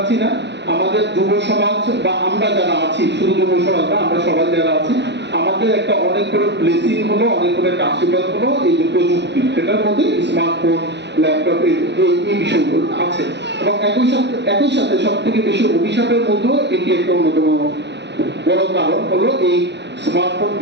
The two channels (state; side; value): late; left; 0.50 ms